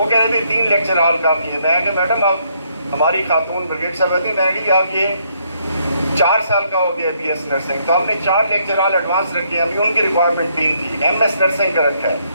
کہہ رہے تھے 3 لیکچر ہال کافی ہے. میں کہ میڈم آپ ہماری خاتون بریگیڈ صاحب ہوتی میڈی آپ یہ 4 سال کا ہو گیا BS نرسنگ، تو ہم نے 4 لیکچر ہال ایڈوانس رکھے. ابھی ان کی ریکوائرمنٹ 3 تھی. MS نرسنگ کا رکھا ہے.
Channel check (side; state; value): both; inverted; correlation -0.71